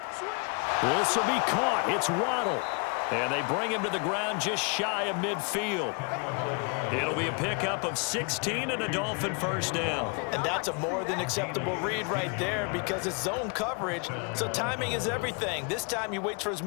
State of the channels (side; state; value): right; quieter; 34.5 dB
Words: This will be caught. It's Waddle. And they bring him to the ground just shy of midfield. It'll be a pickup of 16 and a Dolphin first down. And that's a more than acceptable read right there because it's zone coverage, so timing is everything. This time he waits for his